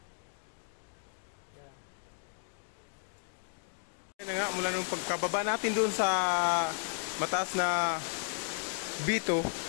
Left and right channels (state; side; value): silent; right; digital silence